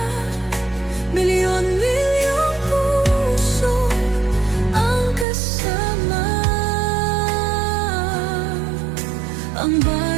Milyon-milyong puso ang kasama. Ang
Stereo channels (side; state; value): left; drops out; at 5.2 s